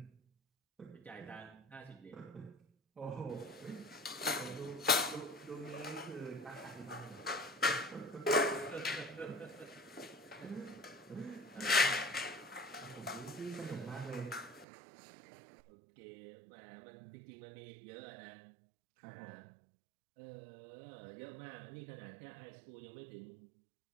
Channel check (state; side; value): drops out; left; at 14.7 s